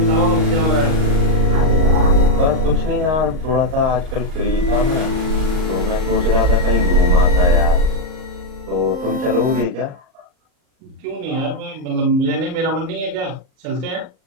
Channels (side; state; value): left; late; 38 ms